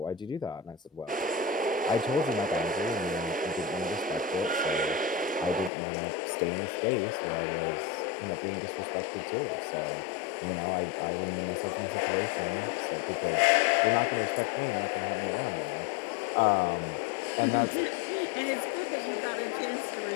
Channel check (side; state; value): right; drops out; at 5.7 s